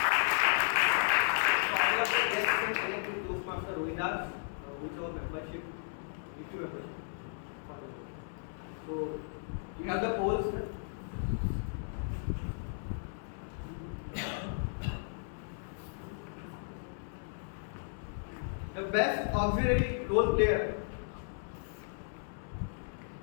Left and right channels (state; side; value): silent; right; digital silence